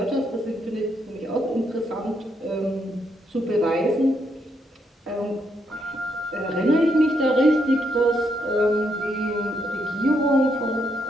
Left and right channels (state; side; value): normal; both; correlation 0.77